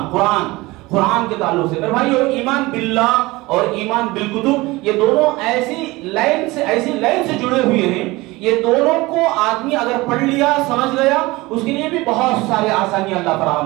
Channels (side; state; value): left; quieter; 21.2 dB